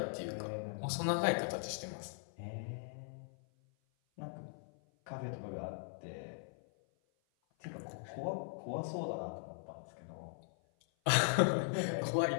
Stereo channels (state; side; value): silent; right; 51 dB below the other